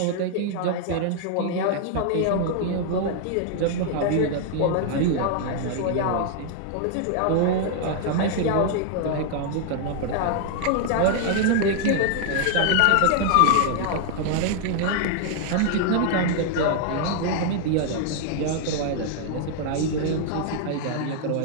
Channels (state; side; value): different; both; correlation 0.00